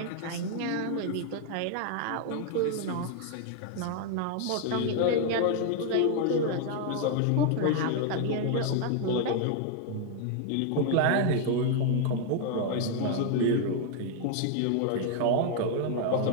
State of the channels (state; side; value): different; both; correlation 0.00